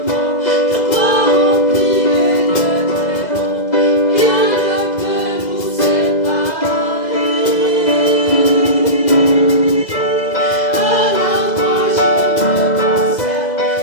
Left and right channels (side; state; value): right; late; 2.0 ms